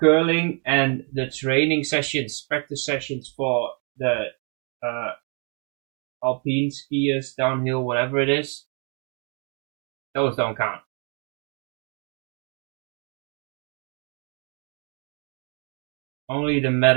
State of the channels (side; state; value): left; quieter; 38.1 dB